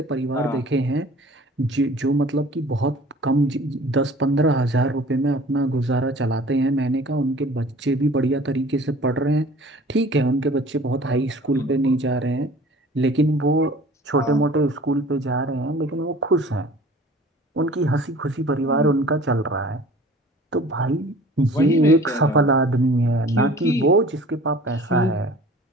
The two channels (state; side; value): normal; both; correlation 0.46